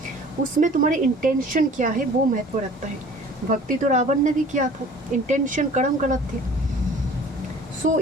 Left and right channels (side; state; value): both; normal; correlation 0.48